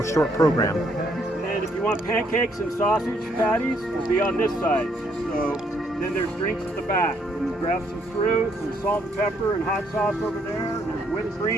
short program. And if you want pancakes and sausage patties, it'll be on this side. So then there's drinks at the back. You grab some fruit, some salt and pepper and hot sauce over there. There's whipped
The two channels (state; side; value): normal; both; correlation 0.70